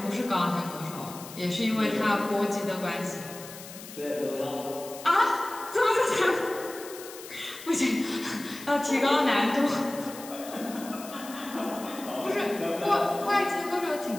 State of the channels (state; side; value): noise; left; hiss, 14 dB below the sound